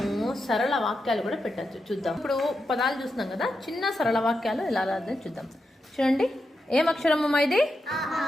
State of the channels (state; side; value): normal; both; correlation 0.87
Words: సరళ వాక్యాలు కూడా పెట్టచ్చు. చూద్దాం. ఇప్పుడు పదాలు చూస్తున్నాం కదా, చిన్న సరళ వాక్యాలు ఎలా రాదని చూద్దాం. చూడండి, ఏం అక్షరము ఇది?